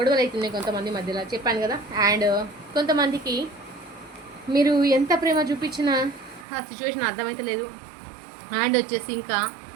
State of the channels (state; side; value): drops out; left; at 6.5 s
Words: అవుతున్నాయి కొంతమంది మధ్యలో, చెప్పాను కదా. అండ్ కొంతమందికి మీరు ఎంత ప్రేమ చూపించినా ఆ సిచ్యువేషన్ అర్థమైతే లేదు. అండ్ వచ్చేసి